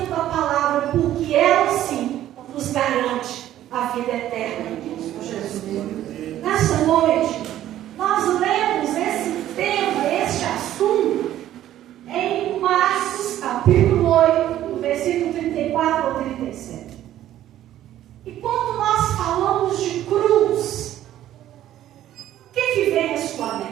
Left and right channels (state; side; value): quieter; left; 12.6 dB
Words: da palavra, porque ela sim nos garante a vida eterna em Cristo Jesus. Nessa noite, nós lemos esse tema, este assunto, em Marcos, capítulo 8, do versículo 34 ao 37. E quando nós falamos de cruz, o que vem à sua